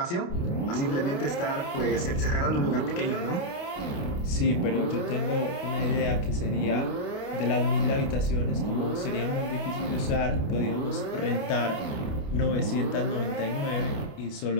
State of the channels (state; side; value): late; right; 28 ms